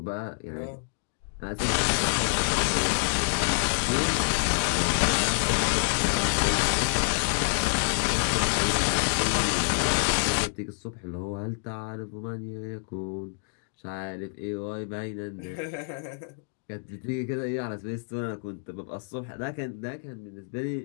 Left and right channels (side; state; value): right; silent; digital silence